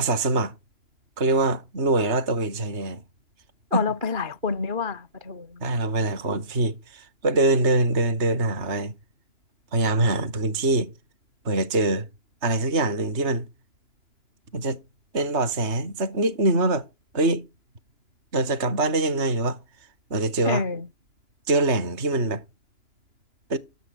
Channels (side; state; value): left; late; 3.2 ms